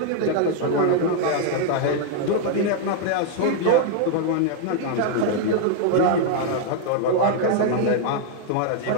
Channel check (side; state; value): both; different; correlation 0.00